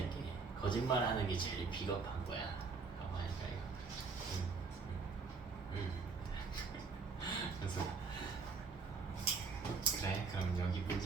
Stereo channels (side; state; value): left; quieter; 4.7 dB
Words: 거짓말하는 게 제일 비겁한 거야. 라고 하니까 이거. 그래서 그래, 그럼 여기